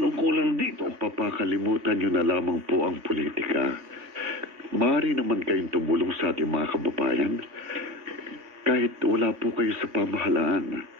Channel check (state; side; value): late; left; 3.5 ms